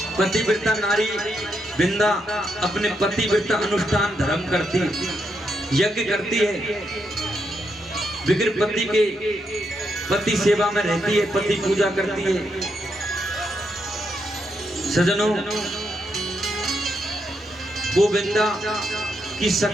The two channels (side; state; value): both; normal; correlation 0.81